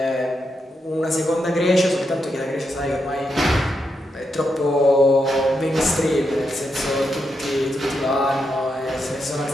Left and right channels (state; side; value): normal; both; correlation 0.84